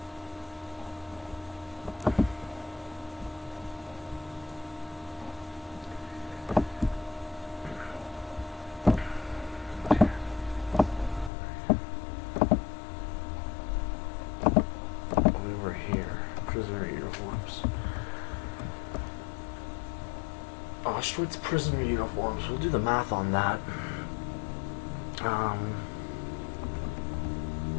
Prisoner uniforms. Auschwitz prisoner uniforms. We'll do the math on that.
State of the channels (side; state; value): right; drops out; at 11.3 s